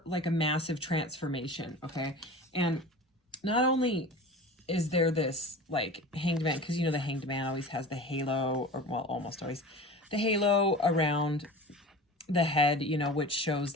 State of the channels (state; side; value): normal; both; correlation 0.36